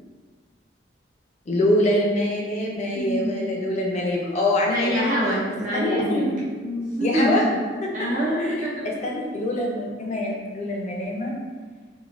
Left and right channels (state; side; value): normal; both; correlation 0.46